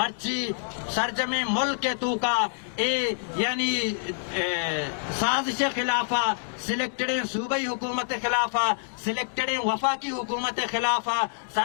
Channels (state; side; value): silent; right; digital silence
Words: سرجم ملک کے تو کا اے یعنی سازش خلافہ سلیکٹڈیں صوبائی حکومت خلافہ سلیکٹڈیں وفاقی حکومت خلافہ